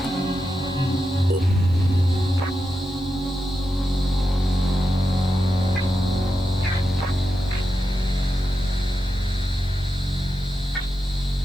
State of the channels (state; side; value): noise; left; hiss, 29 dB below the sound